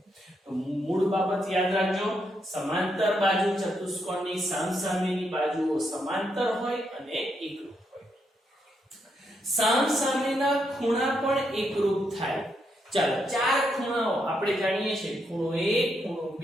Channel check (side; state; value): both; normal; correlation 0.79